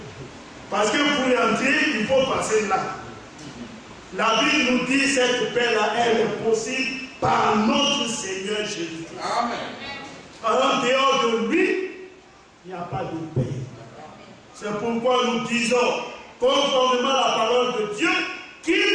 Parce que pour entrer, il faut passer là. La Bible nous dit que cette paix-là, elle est possible par notre Seigneur Jésus-Christ. Amen. En dehors de lui, il n'y a pas de paix. C'est pourquoi nous disons, conformément à la parole de Dieu,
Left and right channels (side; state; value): both; identical; correlation 1.00